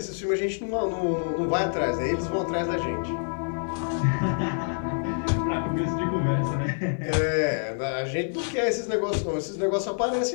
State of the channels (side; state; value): right; silent; digital silence